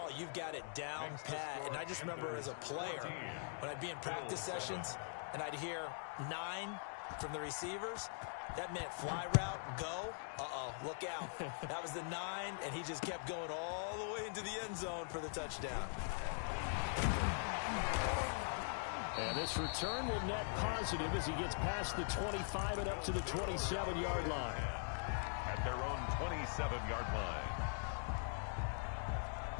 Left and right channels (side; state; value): right; silent; digital silence